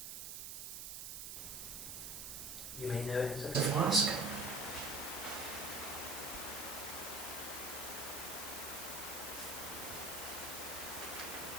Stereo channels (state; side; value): noise; right; hiss, 6 dB below the sound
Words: You may know it as a flask.